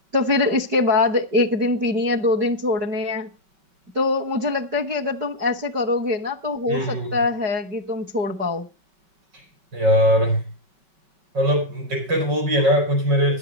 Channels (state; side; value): late; left; 5.3 ms